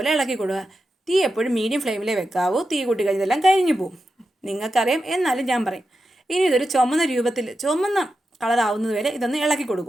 ഇളക്കി കൊടുക്കുക. തീ എപ്പോഴും മീഡിയം ഫ്ലെയിമിലേ വെക്കാവൂ. തീ കൂട്ടി കഴിഞ്ഞതെല്ലാം കരിഞ്ഞു പോകും. നിങ്ങൾക്കറിയാം, എന്നാലും ഞാൻ പറയും. ഇനി ഇതൊരു ചുമന്ന കളറാവുന്നത് വരെ ഇതൊന്ന് ഇളക്കി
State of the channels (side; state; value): both; normal; correlation 0.89